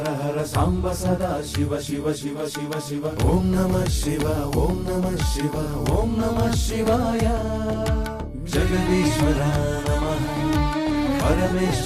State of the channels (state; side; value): identical; both; correlation 1.00